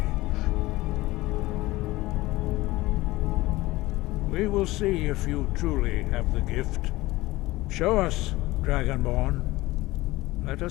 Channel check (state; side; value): quieter; right; 19.1 dB